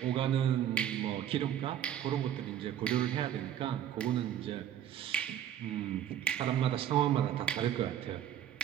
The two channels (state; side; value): quieter; left; 10.7 dB